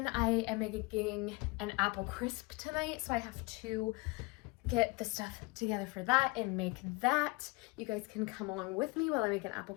I am making an apple crisp tonight, so I have to get the stuff together for that and make that. You guys can come along with me while I make an apple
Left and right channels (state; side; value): quieter; right; 25.5 dB